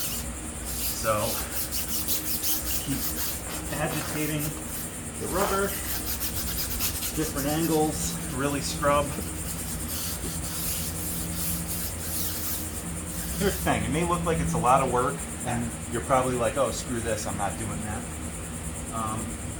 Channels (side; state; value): both; identical; correlation 1.00